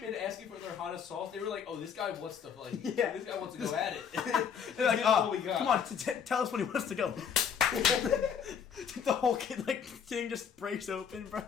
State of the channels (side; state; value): right; quieter; 7.4 dB